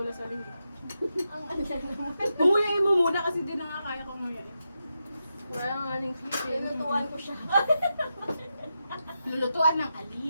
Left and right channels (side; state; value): both; inverted; correlation -0.87